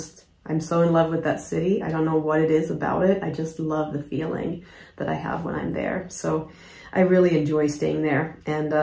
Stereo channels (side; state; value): both; identical; correlation 1.00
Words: I'm so in love with that city. I don't know what it is about it. I just love the feeling that I have when I'm there. So I really enjoy staying there. And